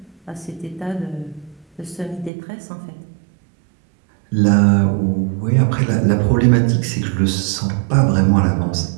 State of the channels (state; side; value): drops out; left; at 2.3 s